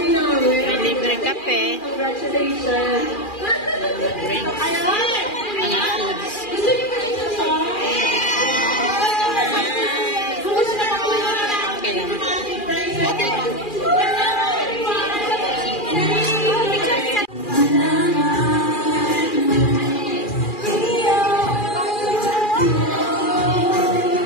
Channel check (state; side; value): late; right; 2.4 ms